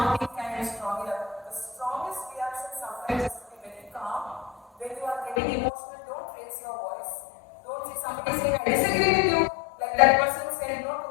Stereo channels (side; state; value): right; drops out; at 5.4 s